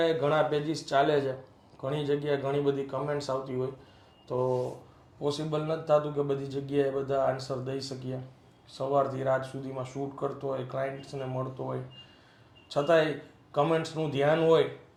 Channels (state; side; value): identical; both; correlation 1.00